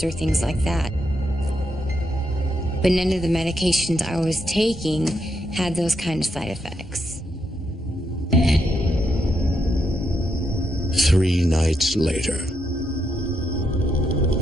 or things like that. But none of the medications I was taking had those kind of side effects. 3 nights later.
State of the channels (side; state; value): both; normal; correlation 0.80